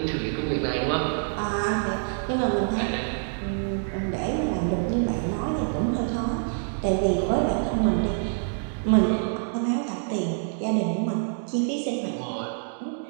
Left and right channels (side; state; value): left; silent; digital silence